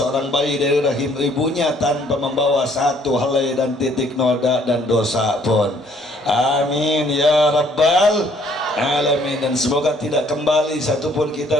bayi dari rahim ibunya tanpa membawa satu helai dan titik noda dan dosa pun. Amin ya rabbal alamin. Dan semoga tidak kembali satupun kita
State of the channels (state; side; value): normal; both; correlation 0.62